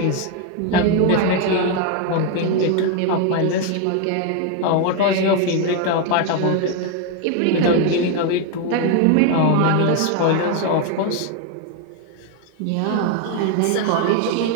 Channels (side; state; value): both; different; correlation 0.01